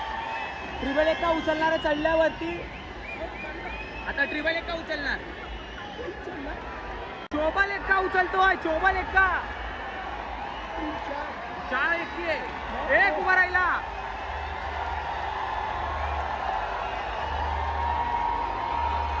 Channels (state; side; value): identical; both; correlation 1.00